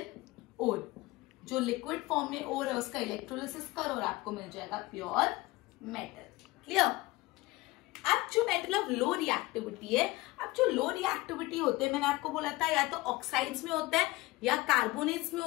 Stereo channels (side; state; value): right; quieter; 20.7 dB